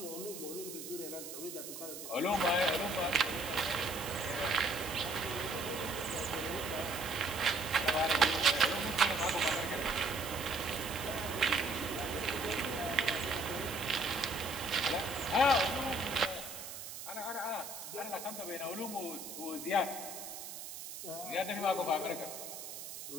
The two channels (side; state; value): right; noise; hiss, 9 dB below the sound